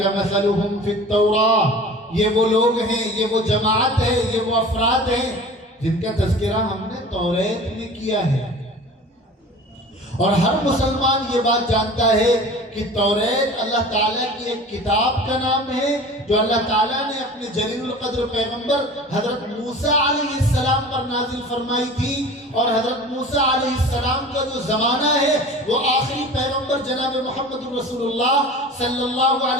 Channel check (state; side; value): normal; both; correlation 0.40